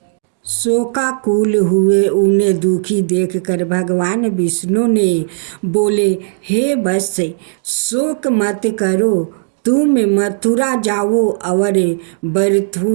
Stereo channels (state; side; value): silent; left; digital silence